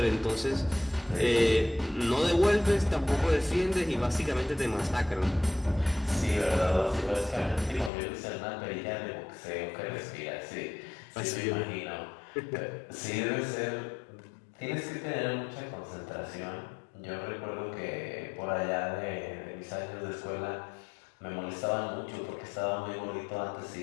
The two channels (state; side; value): drops out; right; at 7.9 s